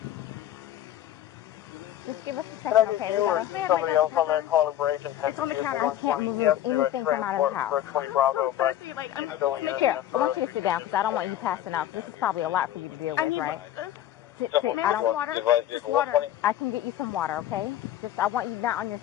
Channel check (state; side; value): quieter; right; 12.1 dB